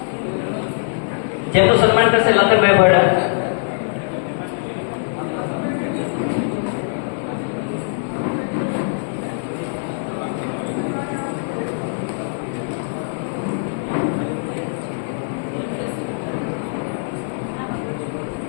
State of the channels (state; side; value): silent; right; digital silence